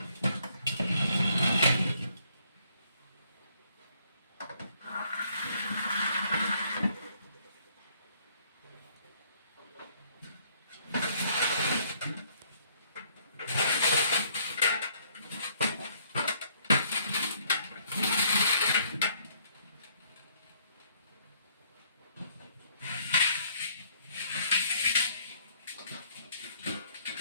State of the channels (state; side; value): inverted; both; correlation -0.65